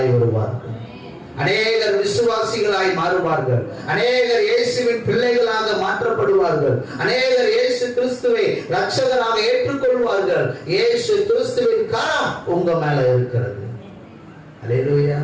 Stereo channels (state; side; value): identical; both; correlation 1.00